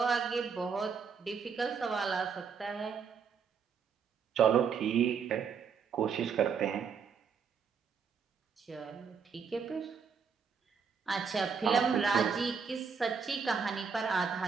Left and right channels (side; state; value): left; quieter; 6.2 dB